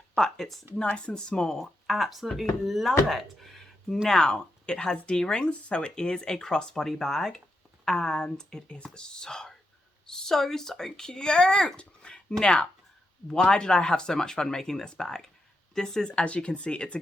but it's nice and small. Absolutely love it. Now, it has D-rings, so it is a crossbody bag, and it is so cute. Now, why did I have so much fun making this bag? This is, as you can see, it's a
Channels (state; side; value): normal; both; correlation 0.85